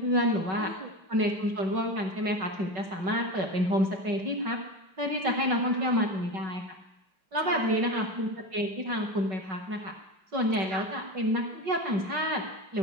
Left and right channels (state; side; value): late; left; 5.3 ms